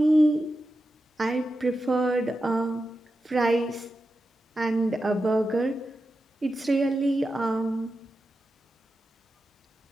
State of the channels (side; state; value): both; normal; correlation 0.90